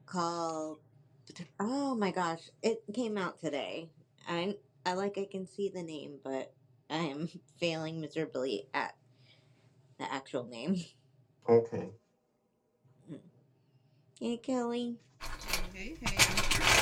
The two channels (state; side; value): identical; both; correlation 1.00